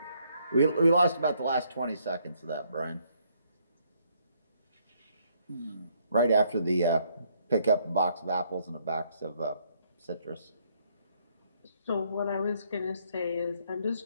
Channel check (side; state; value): both; inverted; correlation -0.70